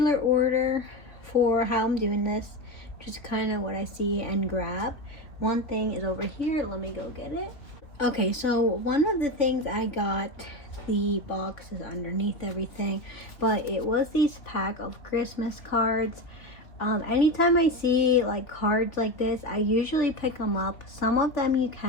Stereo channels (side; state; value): right; late; 3.4 ms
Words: order for how I'm doing this, just kind of what I see and grab. One thing is over here, let me go get it. Okay, so one of the things I got, the box is underneath everything, but it was these pack of Christmas cards. Anytime I see like cards like this, I usually pick them up. Some of them you